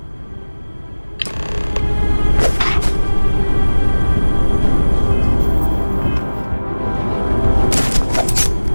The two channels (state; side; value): inverted; both; correlation -1.00